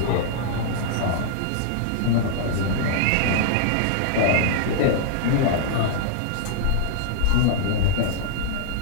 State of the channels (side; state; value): both; different; correlation -0.01